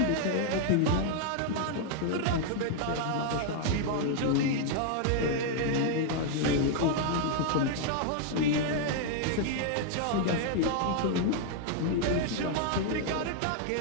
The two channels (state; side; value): different; both; correlation 0.00